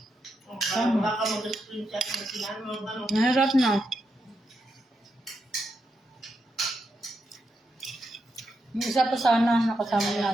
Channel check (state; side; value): normal; both; correlation 0.84